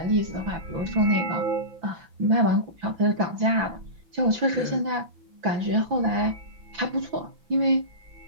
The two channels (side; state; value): left; late; 5.9 ms